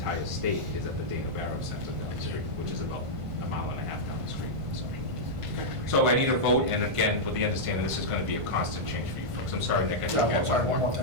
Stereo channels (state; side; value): late; left; 1.5 ms